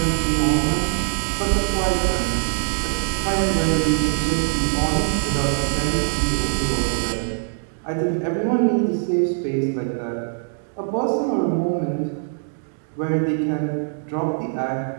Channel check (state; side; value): silent; left; digital silence